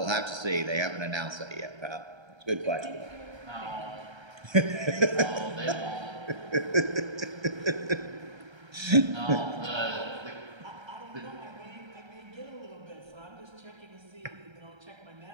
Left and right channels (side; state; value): left; late; 1.3 ms